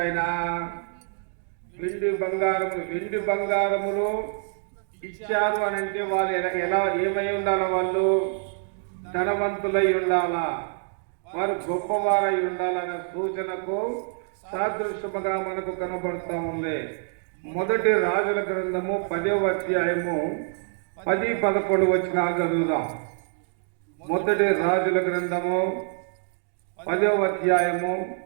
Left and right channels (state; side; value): silent; left; 58 dB below the other